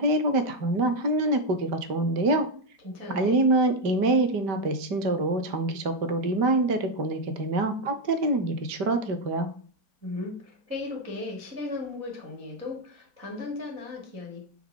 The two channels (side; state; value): left; late; 5.1 ms